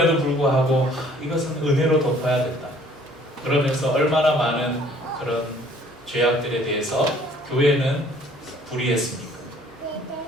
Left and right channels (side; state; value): both; normal; correlation 0.57